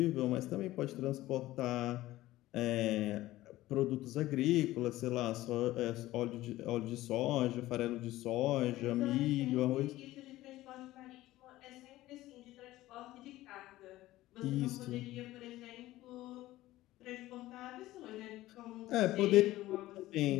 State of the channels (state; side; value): quieter; right; 16.4 dB